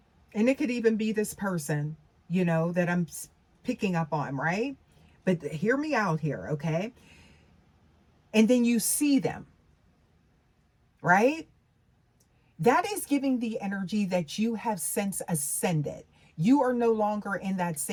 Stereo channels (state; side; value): identical; both; correlation 1.00